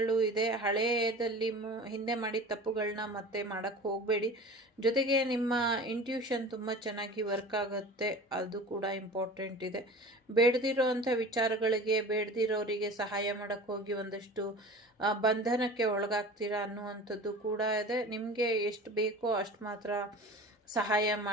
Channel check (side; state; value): both; normal; correlation 0.38